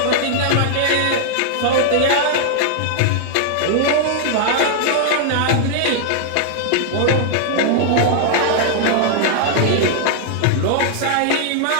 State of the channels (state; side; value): different; both; correlation 0.00